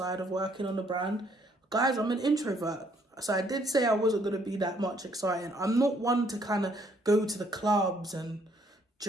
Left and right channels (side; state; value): both; normal; correlation 0.67